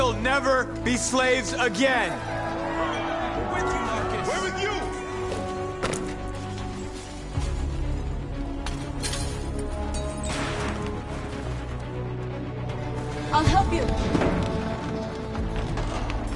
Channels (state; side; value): identical; both; correlation 1.00